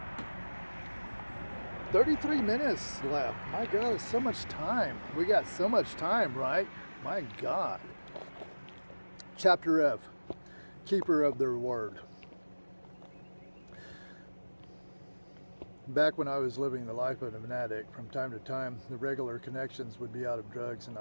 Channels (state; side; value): inverted; both; correlation -1.00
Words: 33 minutes left. My God, so much time. We got so much time, right? My God. Chapter F, Keeper of their Word. Back when I was living the life of an addict, from time to time, the regular connections would be out of drugs and